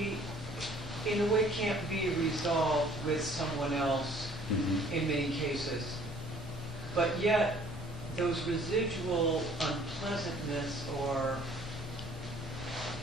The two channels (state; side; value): noise; right; hum, 23 dB below the sound